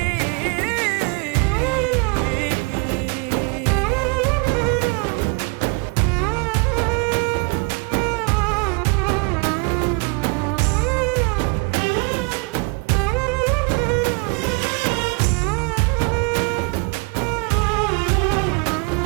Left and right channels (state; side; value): quieter; left; 31.8 dB